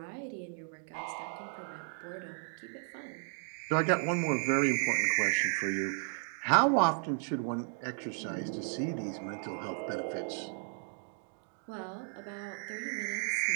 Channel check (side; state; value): left; silent; 55 dB below the other